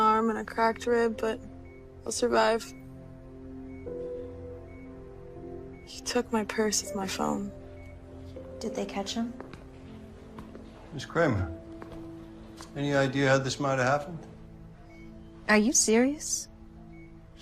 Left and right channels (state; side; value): identical; both; correlation 1.00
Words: and a cracked rib, but I'll survive. He took my purse with my phone. Did they catch him? Miss Kramer, any idea how this might have happened? Are you serious?